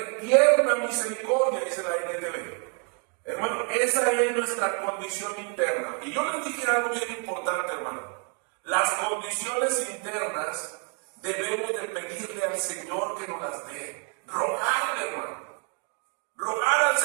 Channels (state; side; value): quieter; left; 39.0 dB